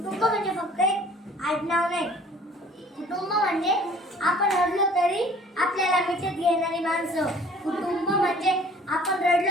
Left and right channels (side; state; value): both; normal; correlation 0.51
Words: म्हणजे फक्त एक आडनाव नाही. कुटुंब म्हणजे आपण रडलो तरी आपल्याला मिठीत घेणारी माणसं. कुटुंब म्हणजे आपण